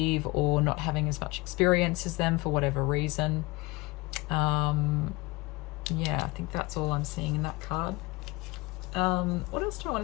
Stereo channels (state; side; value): quieter; right; 23.0 dB